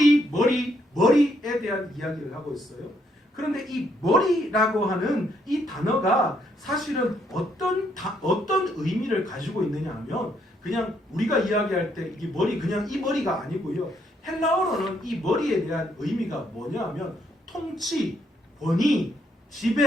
대한 이야기를 하고 있어요. 그런데 이 머리라고 하는 이 단어가 사실은 어떤 의미를 가지고 있느냐 하면 그냥 우리가 이야기할 때 이 머리 그냥 이 머리가 아니고요. 헬라어로는 이 머리에 대한 의미가 뭐냐하면 통치, 권위,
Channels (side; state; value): both; normal; correlation 0.72